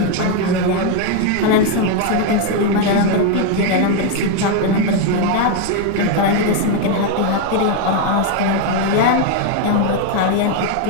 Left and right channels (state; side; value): different; both; correlation 0.01